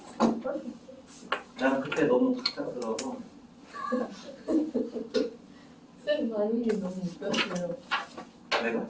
나는 그때 너무 갑작스러워서 쌤 반응이 너무 웃겼어요. 내가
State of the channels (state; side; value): identical; both; correlation 1.00